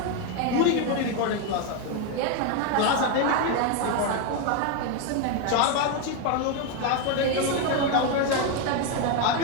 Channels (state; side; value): different; both; correlation 0.02